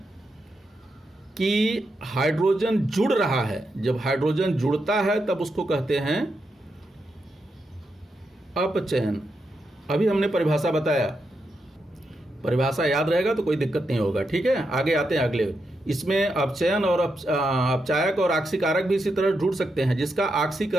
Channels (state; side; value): normal; both; correlation 0.84